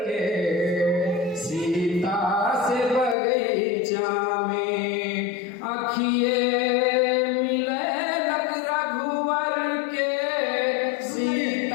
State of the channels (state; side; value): drops out; right; at 3.2 s